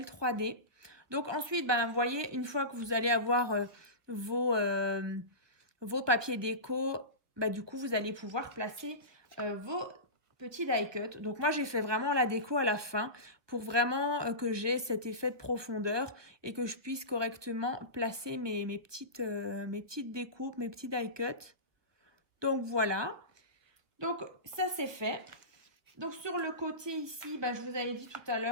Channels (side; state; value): left; late; 1.3 ms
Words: 3D. Donc ensuite, ben, vous voyez, une fois que vous allez avoir vos papiers déco, ben, du coup, vous allez pouvoir placer vos petits die cut. Donc moi, j'ai fait vraiment la déco à la fin pour vraiment que j'ai cet effet de profondeur et que je puisse correctement placer mes petites découpes, mes petits die cut. Donc voilà. Donc ça, c'est fait. Donc sur le côté ici, bah, je vous avais dit tout à